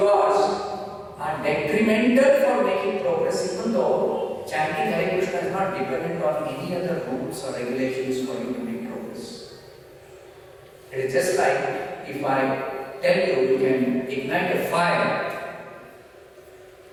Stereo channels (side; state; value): both; identical; correlation 1.00